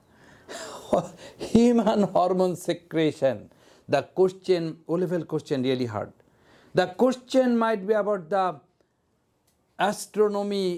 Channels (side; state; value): both; identical; correlation 1.00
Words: human hormone secretion. The question, O-level question really hard. The question might be about the